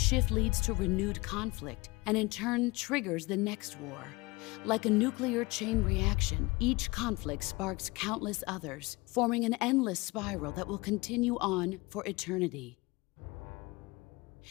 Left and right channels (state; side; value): quieter; right; 23.4 dB